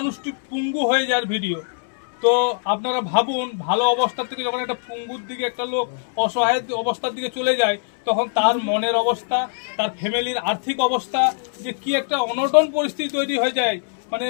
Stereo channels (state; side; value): silent; right; 63 dB below the other